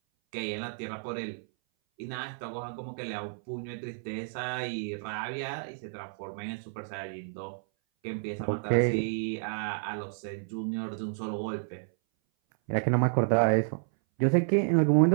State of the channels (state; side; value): silent; left; 57 dB below the other